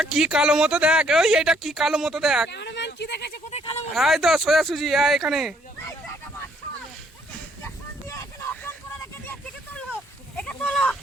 কি কালো মতো দেখ, ওই এটা কি কালো মতো দেখ। ক্যামেরাম্যান কি দেখেছে? কোথায় কালো মতো? এই তো সোজা সুজি এখানে। এই তো একটা বাচ্চা, ইনজেকশন দিয়ে এখানে অজ্ঞান করে রেখে দিয়েছে। একে তোলো, একে তোলো,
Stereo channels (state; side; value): normal; both; correlation 0.67